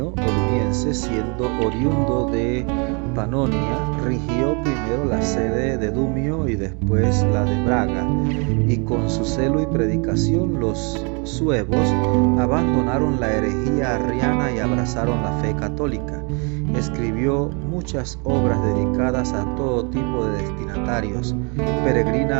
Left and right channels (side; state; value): left; quieter; 33.8 dB